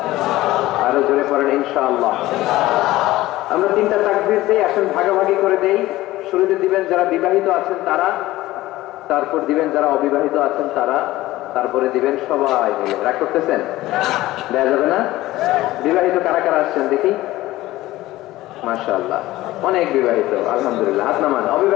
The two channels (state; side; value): quieter; right; 16.9 dB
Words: আরো জোরে পড়েন ইনশাআল্লাহ। আমরা 3টা তাকবীর দেই, আসেন ভাগাভাগি করে দেই। শুরুতে দিবেন যারা বিবাহিত আছেন তারা, তারপর দিবেন যারা অবিবাহিত আছেন তারা, তারপরে দিবেন সবাই মিলে। রাগ করতেছেন? দেয়া যাবে না? বিবাহিত কারা কারা আসছেন দেখি? মাশাআল্লাহ, অনেক বিবাহিত, আলহামদুলিল্লাহ। হাত নামান।